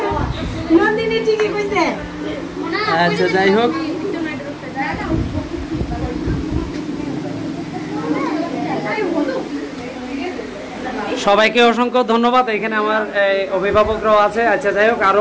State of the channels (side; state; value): both; identical; correlation 1.00